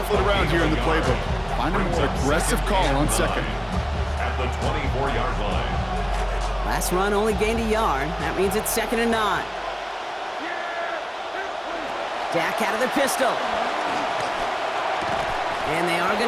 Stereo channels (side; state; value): both; identical; correlation 1.00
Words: around here in the playbook. Find a more aggressive call on second. At the 24-yard line. Last run only gained a yard. That means it's 2nd and 9. Dak out of the pistol. And they are going